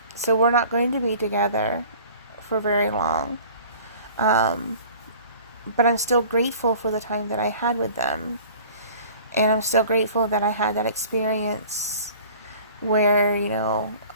we're not going to be together for very long. But I'm still grateful for the time that I had with them. And I'm still grateful that I had that experience where,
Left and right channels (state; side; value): inverted; both; correlation -0.47